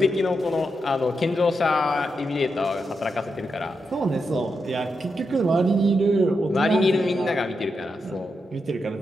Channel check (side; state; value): both; normal; correlation 0.85